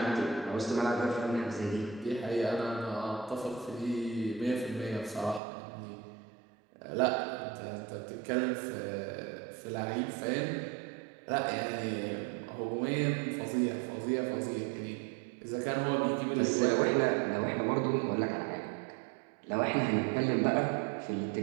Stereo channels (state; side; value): drops out; left; at 5.4 s